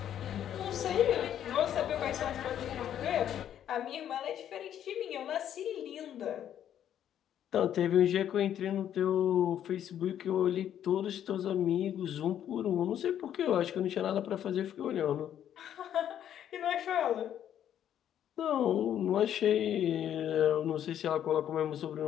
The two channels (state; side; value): quieter; right; 10.3 dB